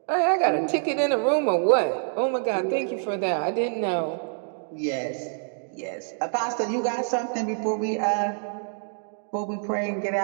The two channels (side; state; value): left; silent; digital silence